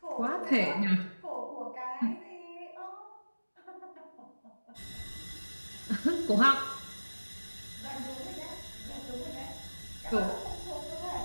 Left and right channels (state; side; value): inverted; both; correlation -1.00